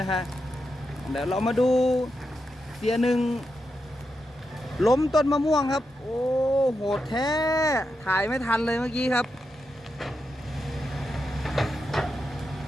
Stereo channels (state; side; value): normal; both; correlation 0.86